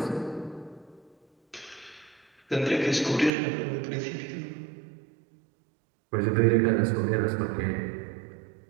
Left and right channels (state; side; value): drops out; left; at 3.3 s